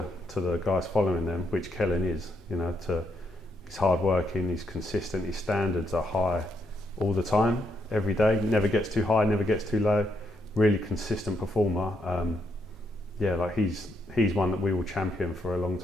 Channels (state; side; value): normal; both; correlation 0.77